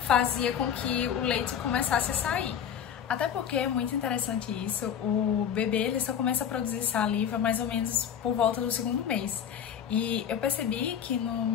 fazia com que o leite começasse a sair. Até porque é muito interessante isso, o bebê ele só começa a produzir saliva mais ou menos por volta do 2º mês. E eu percebi que no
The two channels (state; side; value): quieter; right; 8.7 dB